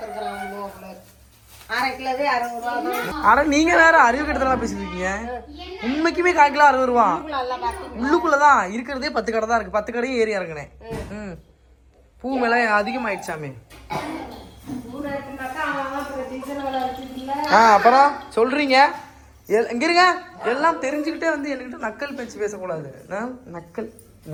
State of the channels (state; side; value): identical; both; correlation 1.00